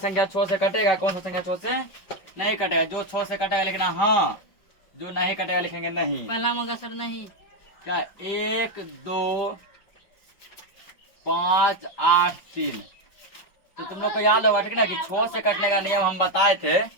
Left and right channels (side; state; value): right; late; 5.3 ms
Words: 6 से कटेगा, कौन सा संख्या 6 से नहीं कटेगा। जो 6 से कटेगा लिखना हाँ, जो नहीं कटेगा लिखेंगे नहीं। पहला मगा सर नहीं, क्या 1 2 5 8 3, तो तुम लोग को याद होगा, ठीक ना, कि 6 से कटने का नियम हम बताए थे।